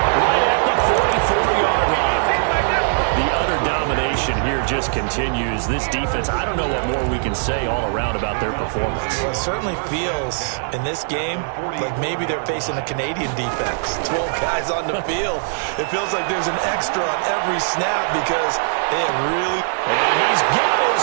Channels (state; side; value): silent; left; digital silence